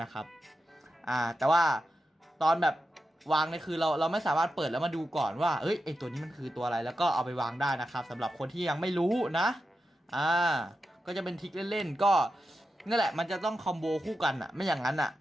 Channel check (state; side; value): normal; both; correlation 0.89